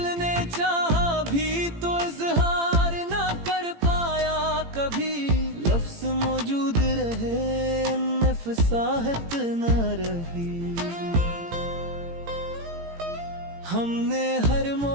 ने चाहा भी तो इजहार न कर पाया कभी, लफ्ज मौजूद रहे उनमें फसाहत न रही। हमने हर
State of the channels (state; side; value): late; left; 18 ms